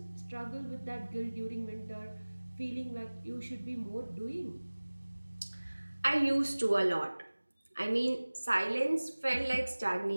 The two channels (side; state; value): both; inverted; correlation -1.00